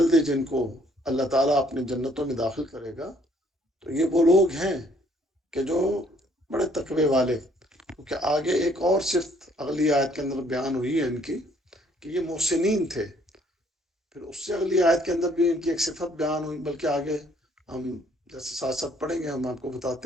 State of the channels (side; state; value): both; normal; correlation 0.63